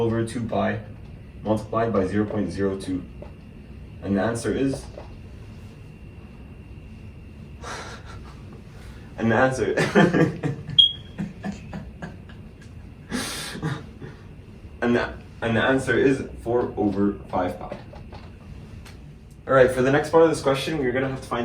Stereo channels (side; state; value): both; identical; correlation 1.00